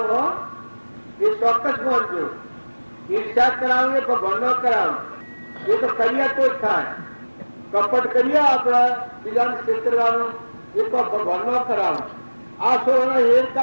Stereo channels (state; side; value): inverted; both; correlation -1.00